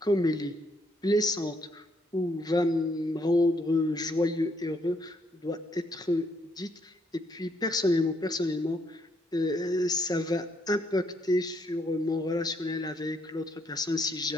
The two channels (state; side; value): normal; both; correlation 0.72